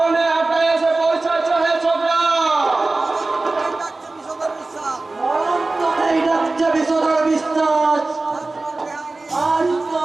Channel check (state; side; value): quieter; left; 3.3 dB